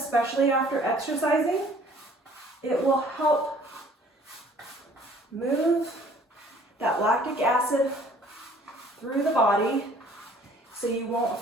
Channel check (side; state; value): both; normal; correlation 0.55